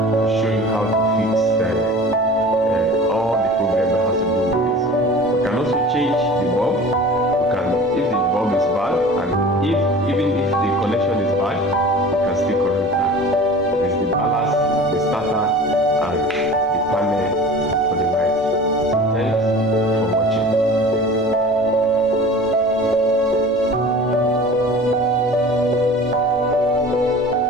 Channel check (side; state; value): both; normal; correlation 0.40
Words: show you how to fix all the problem that has to do with this. We can also change the bulb. We can, if the bulb is bad, and even if the connection is bad,